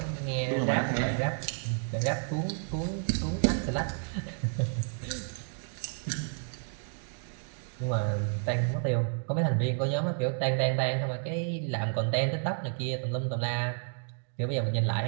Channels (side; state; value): left; silent; 57 dB below the other